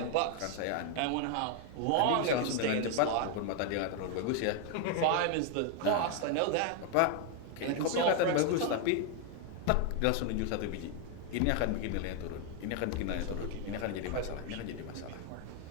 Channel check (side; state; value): both; different; correlation 0.01